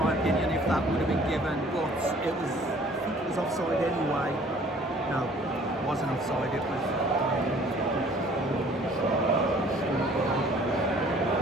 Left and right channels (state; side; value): normal; both; correlation 0.54